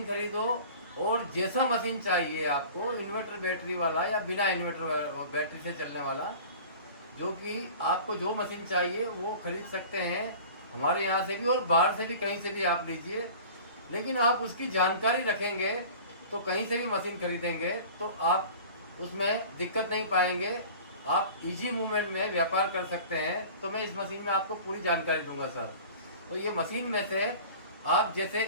खरीदो, और जैसा मशीन चाहिए आपको, इन्वर्टर बैटरी वाला या बिना इन्वर्टर बैटरी से चलने वाला, जो कि आपको जो मशीन चाहिए वो खरीद सकते हैं हमारे यहाँ से भी, और बाहर से भी, कहीं से भी आप लीजिए। लेकिन आप उसकी जानकारी रखेंगे तो कहीं से भी मशीन खरीदेंगे तो आप उसमें दिक्कत नहीं पाएंगे। आप इजी मूवमेंट में व्यापार कर सकते हैं। तो मैं इस मशीन में आपको पूरी जानकारी दूंगा सर। तो ये मशीन में से आप जैसे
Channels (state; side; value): inverted; both; correlation -0.41